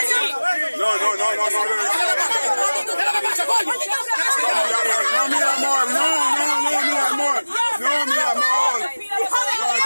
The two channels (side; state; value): both; inverted; correlation -1.00